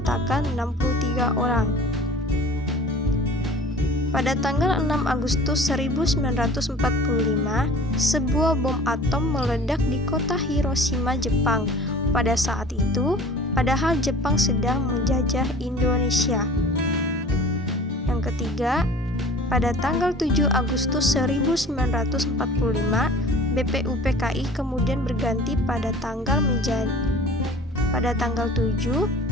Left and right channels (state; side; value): normal; both; correlation 0.44